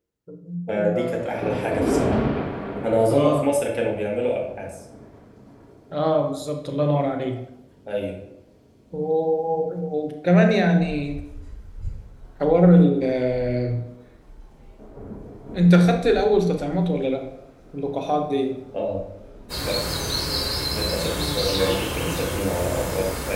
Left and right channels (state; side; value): identical; both; correlation 1.00